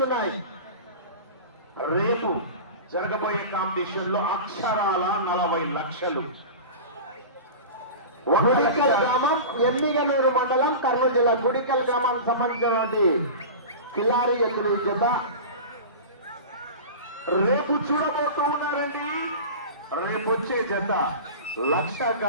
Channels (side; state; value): both; inverted; correlation -0.31